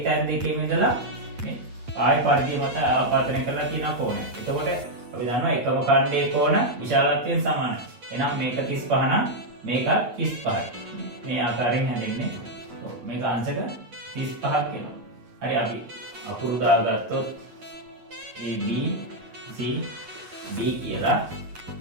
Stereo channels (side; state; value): left; late; 8.6 ms